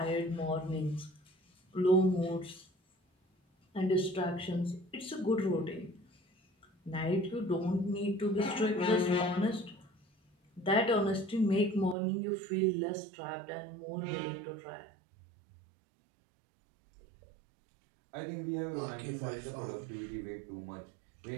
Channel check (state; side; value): drops out; left; at 12.0 s